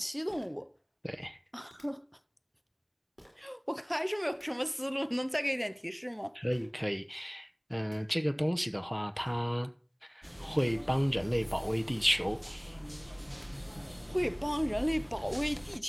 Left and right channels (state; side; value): identical; both; correlation 1.00